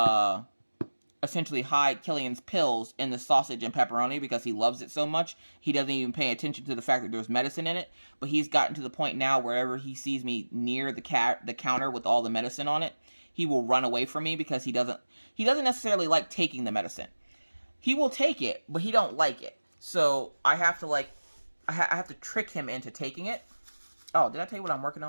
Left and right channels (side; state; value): both; inverted; correlation -1.00